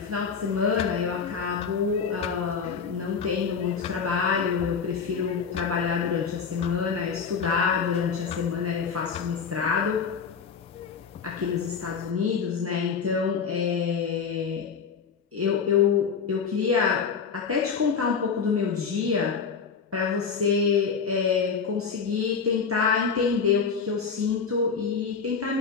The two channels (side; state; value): right; quieter; 6.0 dB